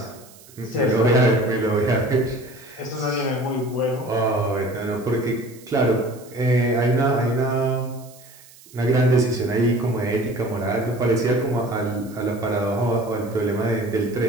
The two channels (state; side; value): noise; right; hiss, 23 dB below the sound